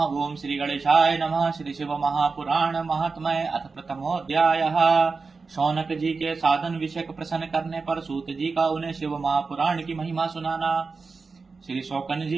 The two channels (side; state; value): left; quieter; 4.4 dB